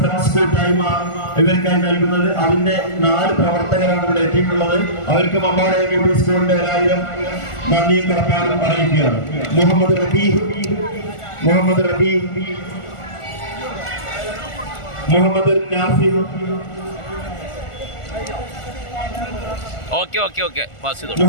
കൂട്ടായ്മ ഇവർക്കായി നൽകുന്നത്. അതിന്റെ 4 പ്രവർത്തകരാണ് ഇവിടെ എത്തിയിട്ടുള്ളത്. അവർക്ക് മമ്പാട് MUP സ്കൂളിന്റെ 1000 നന്ദിയും കടപ്പാടും അറിയിക്കുകയാണ്. മുഹമ്മദ് റബീ, മുഹമ്മദ് നാഫി, ഓക്കെ പാസ് ചെയ്തോ.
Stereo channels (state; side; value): late; right; 1.4 ms